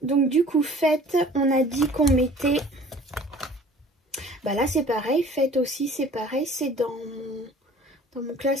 donc du coup fête, on a dit qu'on mettait, bah là c'est pareil, fête aussi c'est pareil, c'est dans mon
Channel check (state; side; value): normal; both; correlation 0.49